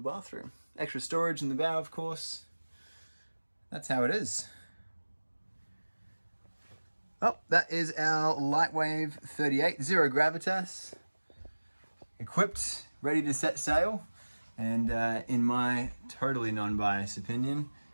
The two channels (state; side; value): inverted; both; correlation -1.00